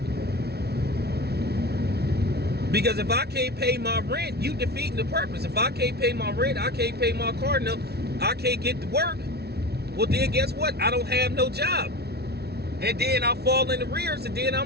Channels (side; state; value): left; late; 0.47 ms